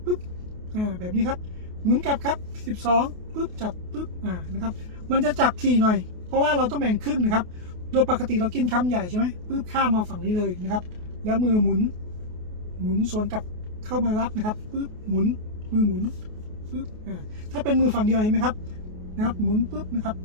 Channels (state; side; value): late; left; 28 ms